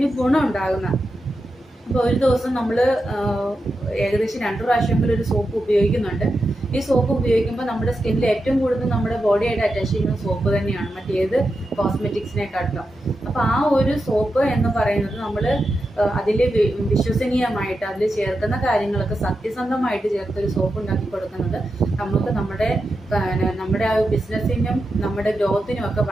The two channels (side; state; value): both; normal; correlation 0.88